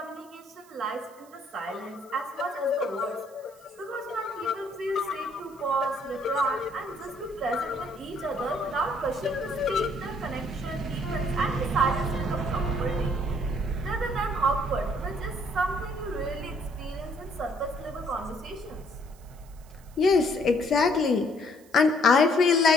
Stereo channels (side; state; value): right; noise; hiss, 27 dB below the sound